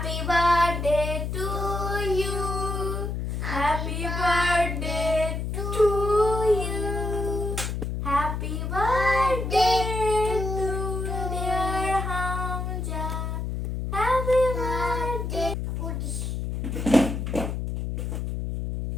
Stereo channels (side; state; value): left; noise; hum, 3 dB below the sound